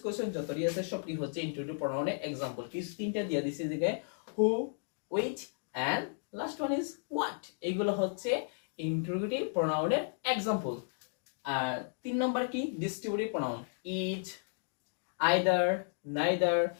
কোশ্চেন যতটি আছে সবটি হচ্ছে ইনটুইটিভ প্রনাউনের এক্সাম্পল। কি তিনটা দিয়ে দিছি দিকে, who, which and last one is what. এগুলো হচ্ছে ইনটুইটিভ প্রনাউনের এক্সাম্পল। আর 3 নম্বর কি? Distributive pronoun. Each, either, neither,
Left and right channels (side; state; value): right; silent; digital silence